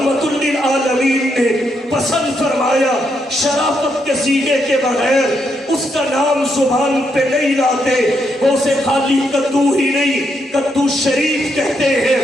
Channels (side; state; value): both; normal; correlation 0.79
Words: للعالمین نے پسند فرمایا شرافت کے سینے کے بغیر اس کا نام زبان پہ نہیں لاتے، وہ اسے خالی کدو ہی نہیں کدو شریف کہتے ہیں،